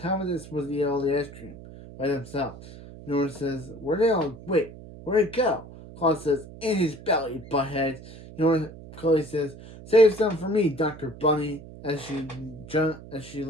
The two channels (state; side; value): noise; right; hum, 16 dB below the sound